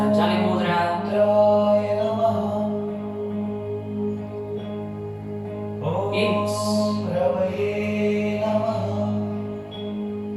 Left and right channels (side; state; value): both; identical; correlation 1.00